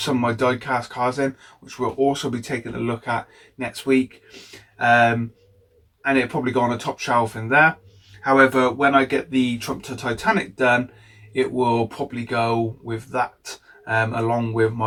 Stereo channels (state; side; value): identical; both; correlation 1.00